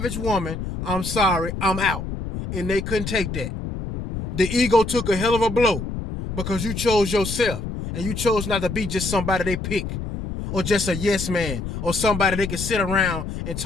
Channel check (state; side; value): noise; left; rumble, 6 dB below the sound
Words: woman. I'm sorry, I'm out. And they couldn't take that. The ego took a hell of a blow because you chose yourself and you chose not to be just somebody they pick or just a yes man, or somebody they can sit around and